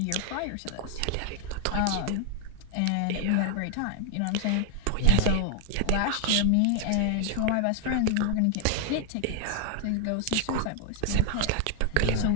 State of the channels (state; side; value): different; both; correlation 0.00